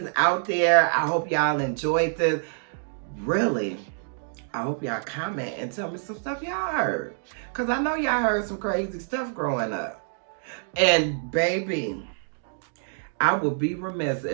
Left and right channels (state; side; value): silent; left; digital silence